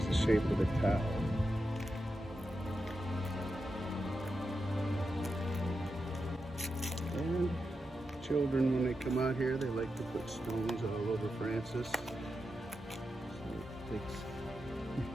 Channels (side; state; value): both; normal; correlation 0.88